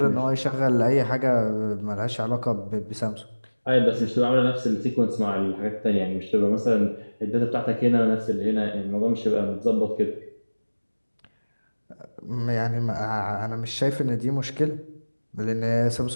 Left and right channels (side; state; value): both; inverted; correlation -1.00